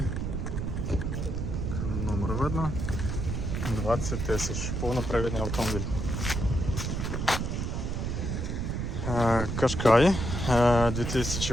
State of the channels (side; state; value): right; noise; rumble, 2 dB below the sound